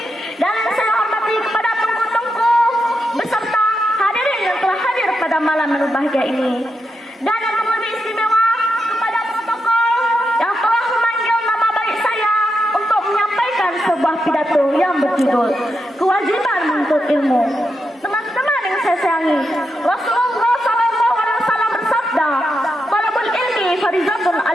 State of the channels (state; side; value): normal; both; correlation 0.85